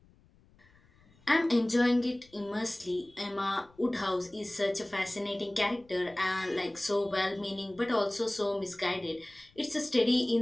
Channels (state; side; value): noise; left; rumble, 30 dB below the sound